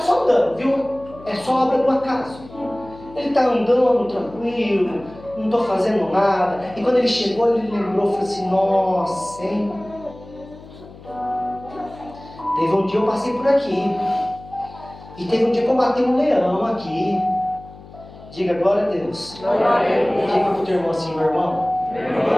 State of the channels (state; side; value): noise; left; hum, 19 dB below the sound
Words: só andando, viu? É só obra do acaso. Ele está andando tranquilo, não estou fazendo nada. E quando ele chegou, ele lembrou, falou assim: nossa, hein? Teve um dia eu passei por aqui. E teve um dia que eu matei um leão aqui. Diga glória a Deus. Glória a Deus. Diga para o teu irmão assim: meu irmão,